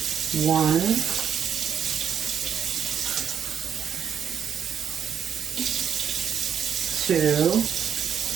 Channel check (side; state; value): left; quieter; 8.1 dB